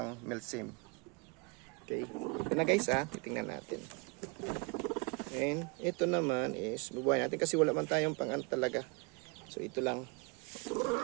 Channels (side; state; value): left; quieter; 31.1 dB